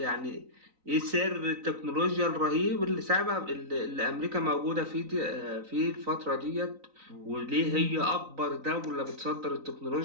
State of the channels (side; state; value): left; late; 3.9 ms